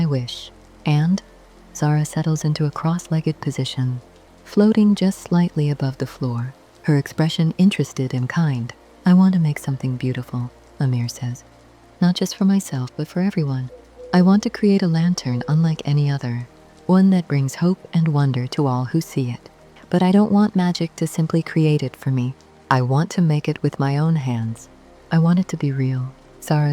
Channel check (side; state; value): both; identical; correlation 1.00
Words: wish." And Zara settles into a cross-legged position, floating just slightly above the floor, her expression interested and kind. "I want to make something beautiful," Amir says. "Not just for myself, but for everyone. I want to create a lantern unlike any other, one that brings hope and wonder to all who see it. But I don't want magic to simply create it for me. I want to make it with my own hands. I want it to be real."